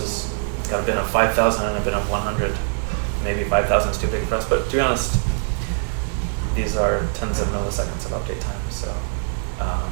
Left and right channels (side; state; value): left; silent; 61 dB below the other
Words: got a bin of 5,000 and a bin of 100, maybe 5,000 is too big for us. But to be honest, these are tens of milliseconds of update time, so